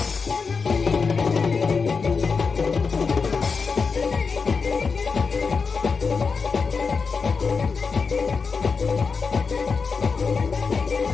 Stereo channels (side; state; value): right; quieter; 5.0 dB